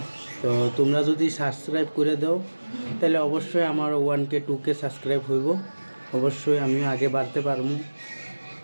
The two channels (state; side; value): inverted; both; correlation -1.00